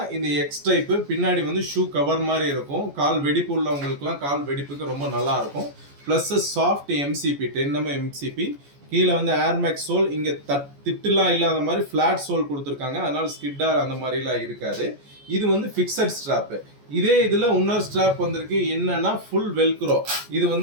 இந்த எக்ஸ் டைப் பின்னாடி வந்து ஷூ கவர் மாதிரி இருக்கும். கால் வெடிப்பு உள்ளவங்களுக்குலாம் கால் வெடிப்புக்கு ரொம்ப நல்லா இருக்கும். Plus soft MCB 10mm MCB. கீழே வந்து ஏர்மேக்ஸ் சோல், இங்கே திட்டுலாம் இல்லாத மாதிரி ஃப்ளாட் சோல் கொடுத்துருக்காங்க. அதனால ஸ்கிட்டார் அந்த மாதிரிலாம் இருக்காது. இது வந்து ஃபிக்ஸட் ஸ்ட்ராப்பு. இதே இதில் இன்னொரு ஸ்ட்ராப் வந்திருக்கு. என்னன்னா ஃபுல் வெல்க்ரோ. இது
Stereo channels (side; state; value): left; late; 14 ms